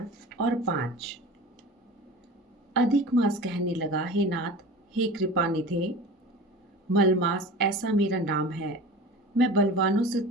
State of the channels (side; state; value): both; normal; correlation 0.35